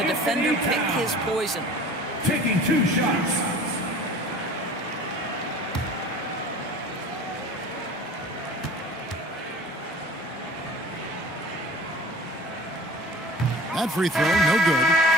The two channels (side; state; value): both; normal; correlation 0.43